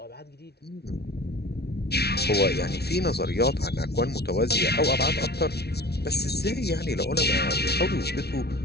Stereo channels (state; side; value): late; right; 0.48 ms